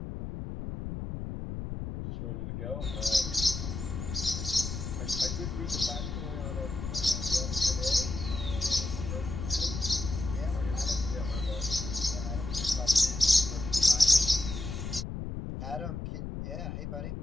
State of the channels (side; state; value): left; noise; rumble, 6 dB below the sound